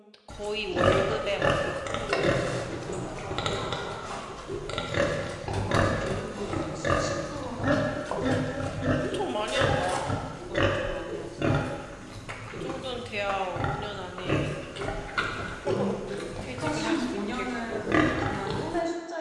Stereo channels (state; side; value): identical; both; correlation 1.00